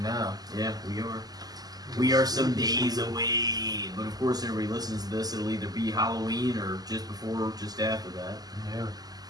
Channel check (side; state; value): left; late; 0.19 ms